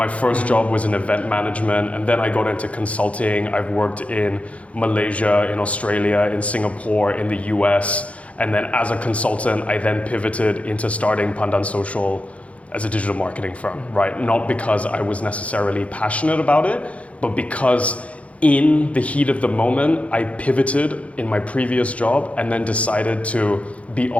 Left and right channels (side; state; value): right; late; 0.064 ms